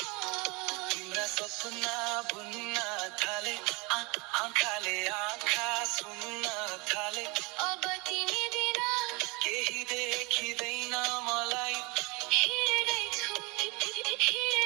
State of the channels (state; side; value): quieter; left; 27.5 dB